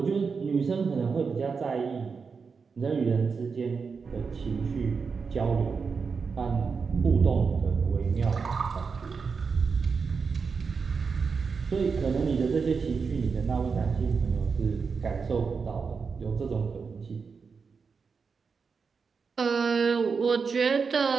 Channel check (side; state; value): left; quieter; 5.3 dB